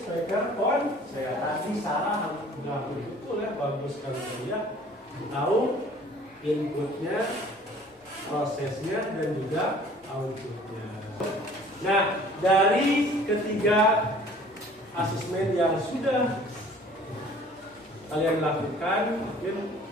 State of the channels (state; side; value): normal; both; correlation 0.51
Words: on. Saya tadi salah nggak betul ya, bagus sekali ya. Tahu inputnya, prosesnya, dan juga outputnya. Nah, dari ketiga asesmen yang sudah kalian lakukan, mungkin